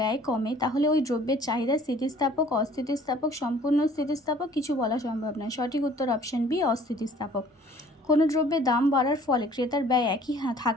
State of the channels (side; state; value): both; normal; correlation 0.54